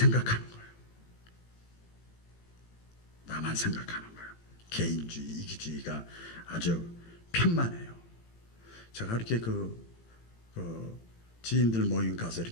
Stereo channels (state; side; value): late; right; 18 ms